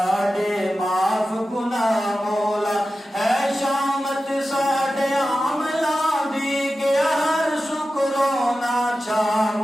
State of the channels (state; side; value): normal; both; correlation 0.93